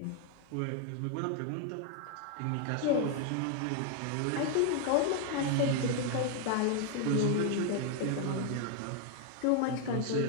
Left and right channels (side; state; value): both; different; correlation 0.00